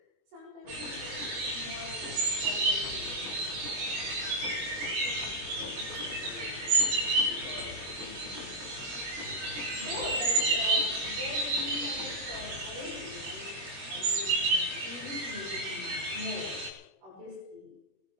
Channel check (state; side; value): late; left; 21 ms